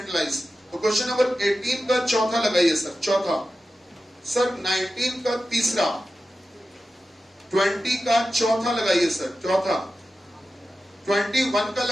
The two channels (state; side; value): normal; both; correlation 0.93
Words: तो क्वेश्चन नंबर 18 का चौथा लगाइए सर, चौथा, सर 19 का तीसरा, 20 का चौथा लगाइए सर, चौथा, 21 का